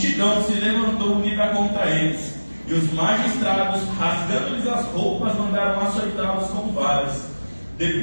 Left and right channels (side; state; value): both; inverted; correlation -1.00